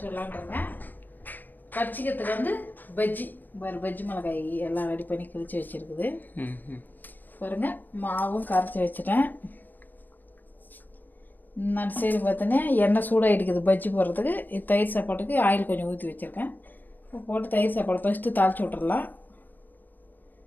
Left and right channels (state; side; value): late; right; 0.090 ms